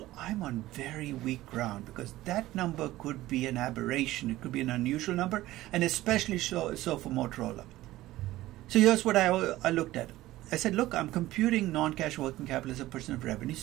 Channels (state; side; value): quieter; left; 16.4 dB